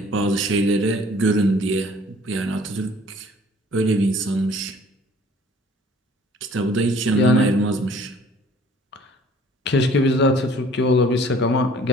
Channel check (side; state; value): both; normal; correlation 0.54